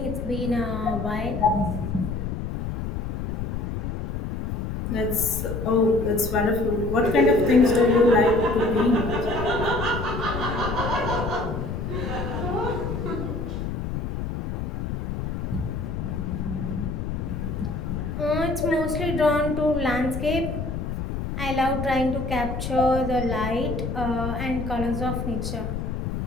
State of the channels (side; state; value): left; noise; rumble, 3 dB below the sound